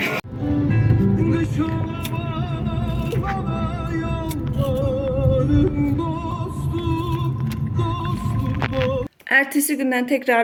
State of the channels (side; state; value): both; identical; correlation 1.00